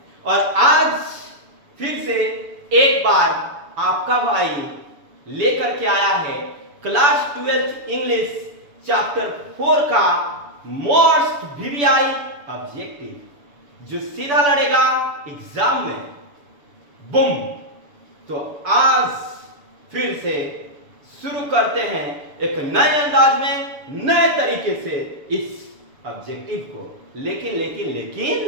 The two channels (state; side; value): late; left; 7.0 ms